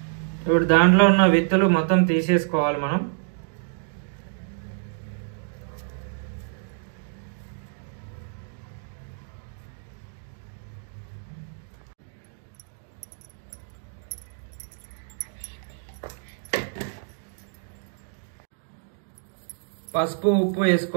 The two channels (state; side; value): silent; left; digital silence